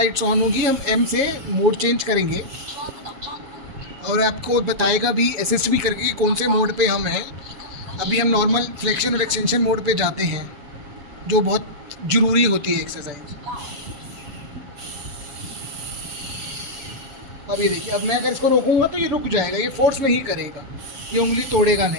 ऑन होगी, हम M से मोड चेंज करेंगे और आपको बताएगा भी, असिस्ट भी करके कौन से मोड पे हम हैं। अभी हम नॉर्मल फ्लेक्शन और एक्सटेंशन मोड पे जाते हैं, जो बहुत ज़रूरी होती है एक्सरसाइज। अब ये देखिए, अब मैं अगर इसको रोकूंगा तो ये रुक जाएगा, ये फोर्स नहीं करेगा, ये उंगली तोड़ेगा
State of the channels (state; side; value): late; left; 7.3 ms